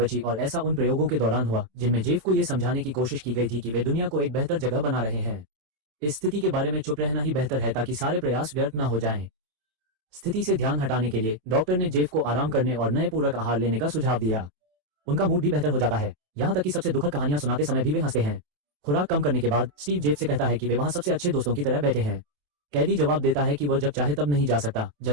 और ऐसा उन प्रयोगों के दौरान हुआ जिनमें जेफ को यह समझाने की कोशिश की गई थी कि वे दुनिया को एक बेहतर जगह बना रहे हैं। इस स्थिति के बारे में चुप रहना ही बेहतर है ताकि सारे प्रयास व्यर्थ न हो जाएं। स्थिति से ध्यान हटाने के लिए डॉक्टर ने जेफ को आराम करने और नए पूरक आहार लेने का सुझाव दिया। उनका मूड भी बेहतर हो जाता है, यहाँ तक कि सबसे दुखद कहानियां सुनाते समय भी वे हंसते हैं। खुराक कम करने के बाद स्टीव जेफ से कहता है कि वे वहां सबसे अच्छे दोस्तों की तरह बैठे हैं। कैदी जवाब देता है कि वह जब चाहे तब नहीं जा सकता,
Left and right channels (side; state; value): left; late; 27 ms